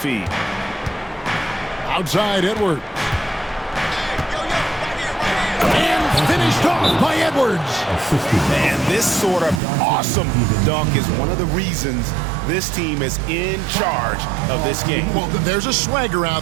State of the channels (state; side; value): drops out; left; at 9.6 s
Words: Outside Edwards. And finished off by Edwards. And this sort of awesome dunk is one of the reasons this team is in charge of this game. Well, there's a swagger